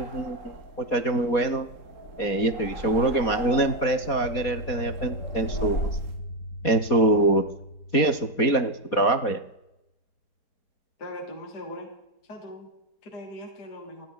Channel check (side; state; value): right; late; 4.2 ms